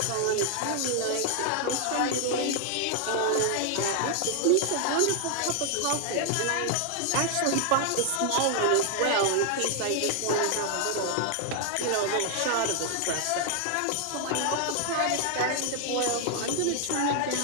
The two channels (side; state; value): both; different; correlation 0.00